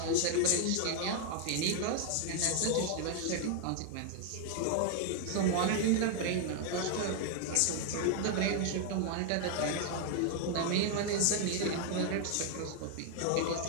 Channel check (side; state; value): both; different; correlation 0.00